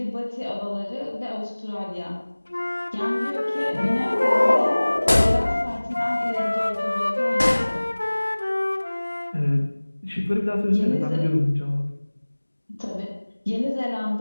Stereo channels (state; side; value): inverted; both; correlation -1.00